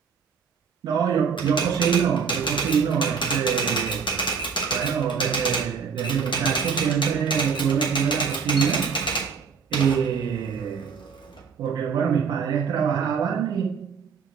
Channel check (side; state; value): left; quieter; 6.0 dB